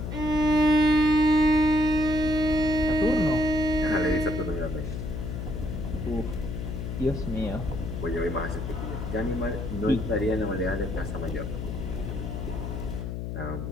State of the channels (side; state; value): left; noise; hum, 5 dB below the sound